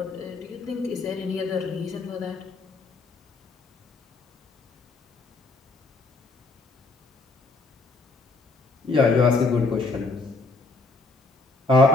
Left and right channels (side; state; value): right; quieter; 3.6 dB